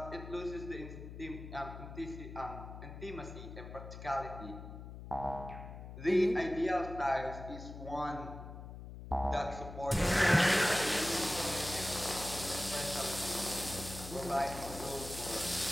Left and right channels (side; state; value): left; noise; hum, 11 dB below the sound